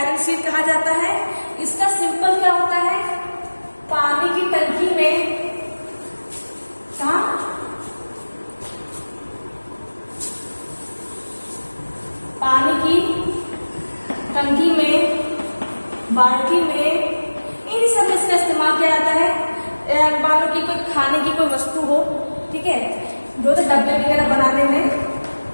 शीट कहा जाता है। इसका सिंपल क्या होता है, पानी की टंकी में, कहाँ, पानी की टंकी में, बाल्टी में, इन सब में इसका इस्तेमाल किया जाता है। मान लो कि कोई खाने की कोई वस्तु हो, ठीक है, जो तो डब्बे वगैरह बनाने में,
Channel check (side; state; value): both; inverted; correlation -1.00